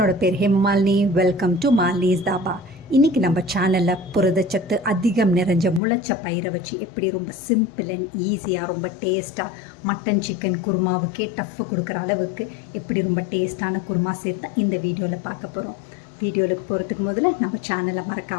பேர் Hemamalini. Welcome to Malini's dhaba. இன்றைக்கி நம்ம சேனலில் புரதச்சத்து அதிகம் நிறைஞ்ச முளைச்ச பயிரை வச்சு எப்படி ரொம்ப சிம்பிள் அண்ட் ஈஸியாக ரொம்ப டேஸ்ட்டாக மட்டன் சிக்கன் குருமாவுக்கே டஃப்பு கொடுக்குற அளவுக்கு எப்படி ரொம்ப டேஸ்ட்டான குருமா சேர்த்து இந்த வீடியோவில் பார்க்க போகிறோம். வீடியோவுக்கு போகிறதுக்கு முதல்ல நம்ம சேனலை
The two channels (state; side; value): drops out; right; at 5.8 s